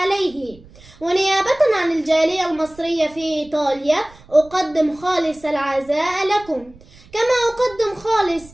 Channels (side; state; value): right; noise; rumble, 24 dB below the sound